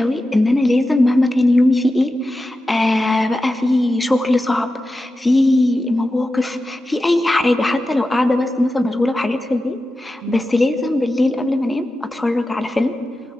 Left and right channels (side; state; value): both; normal; correlation 0.92